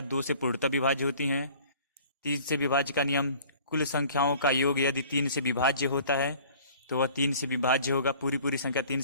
2 से पूर्णतः विभाज्य होती हैं। 3 से विभाज्य का नियम, कुल संख्याओं का योग यदि 3 से विभाज्य होता है तो वह 3 से विभाज्य होगा, पूरी संख्या 3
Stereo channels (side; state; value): both; inverted; correlation -0.50